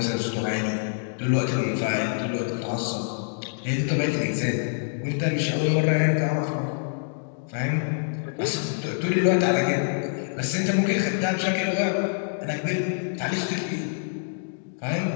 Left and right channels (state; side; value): silent; right; digital silence